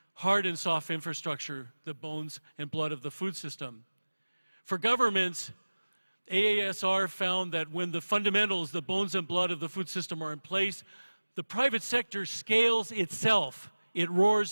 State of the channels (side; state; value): both; inverted; correlation -1.00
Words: hard and soft infrastructure, the bones and blood of the food system. For governments, AASR found that when the fundamentals, the bones and blood of the food system are in place, the private sector scales itself. It